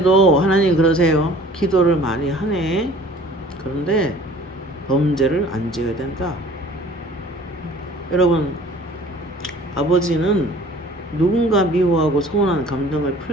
하나님 그러세요. 기도를 많이 하네. 그런데 범죄를 안 지어야 된다. 여러분, 아버지는 누군가 미워하고 서운한 감정을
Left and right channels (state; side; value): normal; both; correlation 0.49